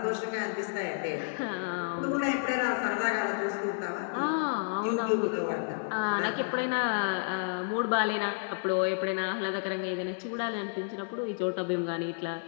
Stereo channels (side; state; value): right; silent; 57 dB below the other